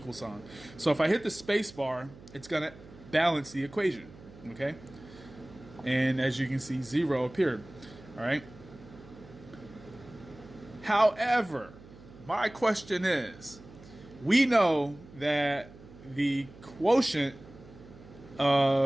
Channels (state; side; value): noise; right; hum, 20 dB below the sound